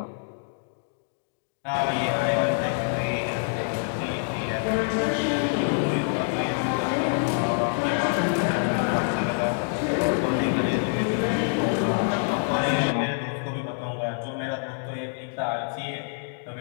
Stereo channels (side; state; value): right; silent; 61 dB below the other